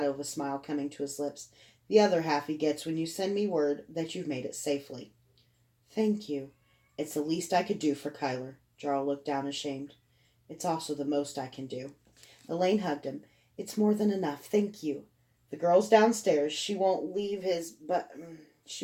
of a smile coming to his lips. "The other half he gets when you send me word that you've made it safely." "Thank you. It's the least I could do for Kyler." Jarl looked down ashamed. "It's also the most I can do." Elaine hugged him. "It's more than enough. Thank you. The girl's downstairs. She won't leave him."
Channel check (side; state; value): both; identical; correlation 1.00